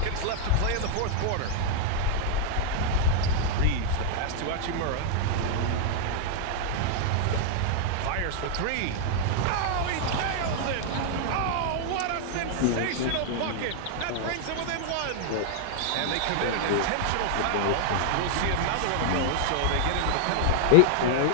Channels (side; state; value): both; different; correlation -0.01